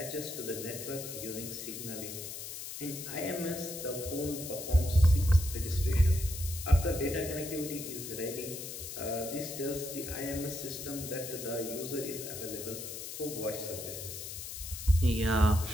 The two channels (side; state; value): left; noise; hiss, 8 dB below the sound